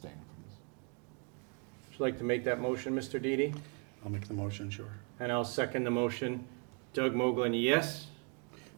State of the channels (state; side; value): quieter; left; 37.6 dB